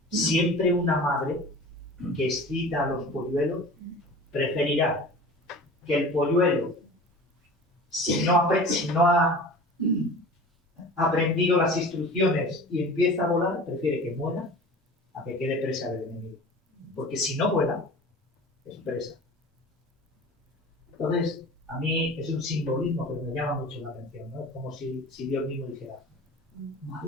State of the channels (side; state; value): both; normal; correlation 0.38